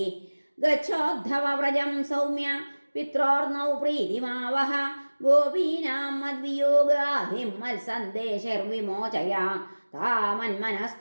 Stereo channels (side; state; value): both; inverted; correlation -1.00